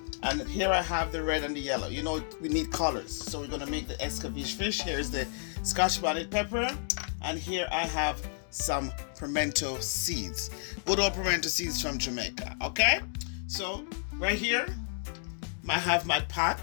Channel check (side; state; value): right; silent; digital silence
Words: and here I have the red and the yellow. You know, we need colors, so we're gonna make the Escovitch fish. Here's the Scotch bonnet pepper, and here I have some pimento seeds. Good old pimento seeds from Jamaica, okay? So right here, I have my pot.